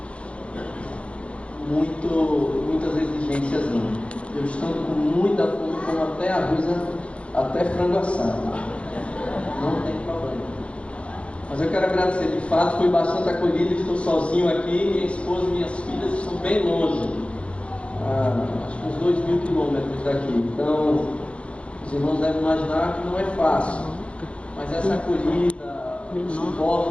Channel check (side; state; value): right; late; 0.061 ms